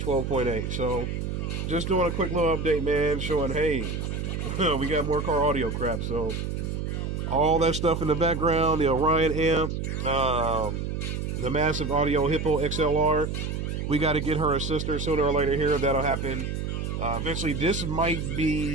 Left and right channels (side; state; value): right; noise; hum, 3 dB below the sound